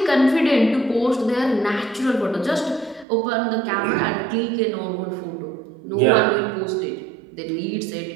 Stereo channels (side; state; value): left; drops out; at 3.1 s